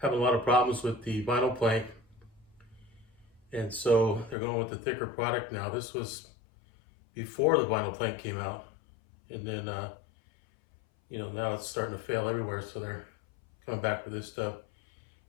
having a lot of problems with the vinyl plank, and so they're going with the thicker product now. This was before the vinyl plank came out, and then now it's starting to fail everywhere, so they're coming back with this stuff.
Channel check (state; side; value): drops out; right; at 4.4 s